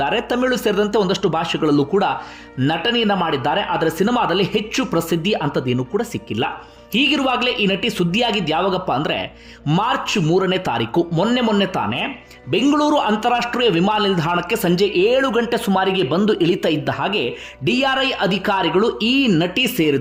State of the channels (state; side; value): identical; both; correlation 1.00